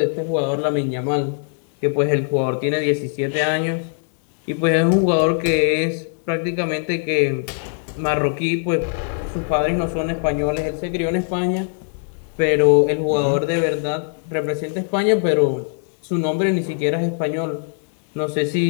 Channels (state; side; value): silent; right; 63 dB below the other